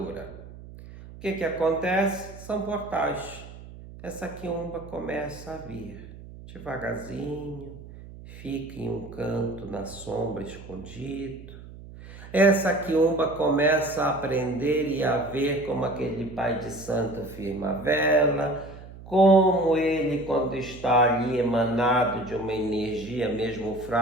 O que acontece? São portais. Essa quiumba começa a vir devagarzinho, fica em um canto na sombra escondido. Essa quiumba começa a aprender e a ver como aquele pai de santo firma a vela, como ele, quando está ali emanado de uma energia mesmo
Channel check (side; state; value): right; noise; hum, 16 dB below the sound